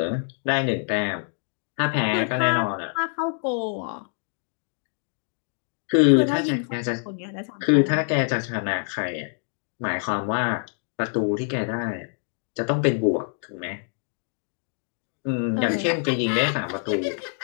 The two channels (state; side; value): silent; right; 57 dB below the other